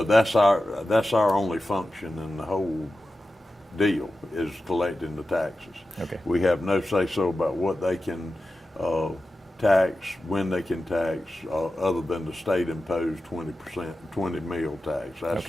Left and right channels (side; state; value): both; normal; correlation 0.93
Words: that's our only function in the whole deal is collecting the taxes. Okay. We have no say so about what they can tax, when they can tax, other than the state imposed 20%, 20 meal tax. That's